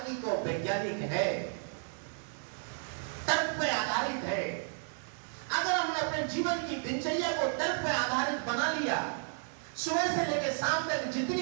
और वैज्ञानिक है, तर्क पे आधारित है। अगर हमने अपने जीवन की दिनचर्या को तर्क पे आधारित बना लिया, सुबह से लेकर शाम तक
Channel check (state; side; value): silent; left; 56 dB below the other